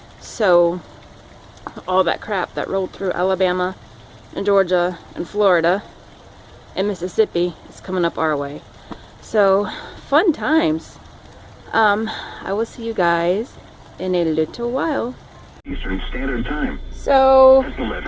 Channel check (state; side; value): identical; both; correlation 1.00